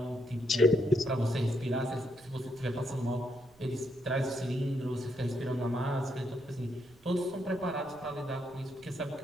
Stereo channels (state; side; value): noise; right; rumble, 27 dB below the sound